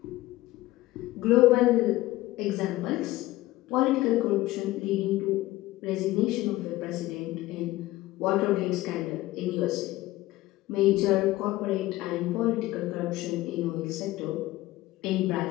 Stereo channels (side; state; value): right; quieter; 17.5 dB